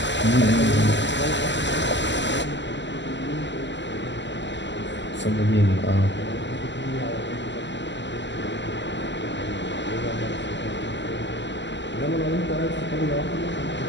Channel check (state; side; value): late; right; 0.53 ms